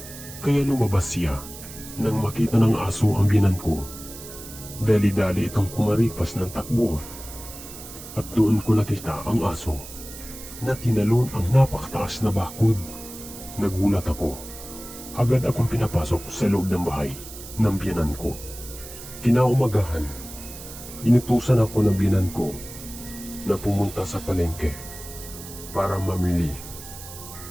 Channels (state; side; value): noise; right; hiss, 14 dB below the sound